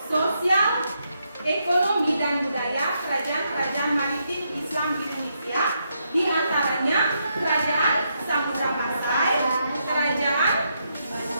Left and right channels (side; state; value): both; inverted; correlation -0.79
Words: sosial, ekonomi, dan budaya kerajaan-kerajaan maritim Islam di Indonesia, di antaranya Kerajaan Samudra Pasai, Kerajaan